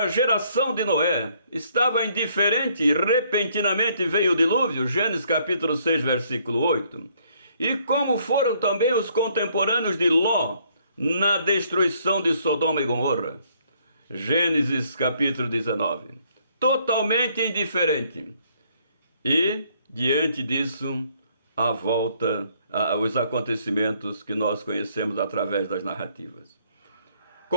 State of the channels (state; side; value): inverted; both; correlation -0.66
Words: geração de Noé estava indiferente e repentinamente veio o dilúvio, Gênesis capítulo 6, versículo 8, e como foram também os contemporâneos de Ló na destruição de Sodoma e Gomorra, Gênesis capítulo 19, totalmente indiferente. E, diante disso, a volta, os acontecimentos que nós conhecemos através das narrativas.